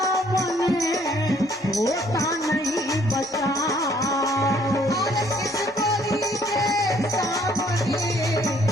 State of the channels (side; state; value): both; normal; correlation 0.63